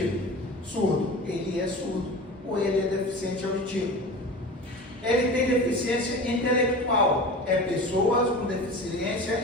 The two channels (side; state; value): both; normal; correlation 0.34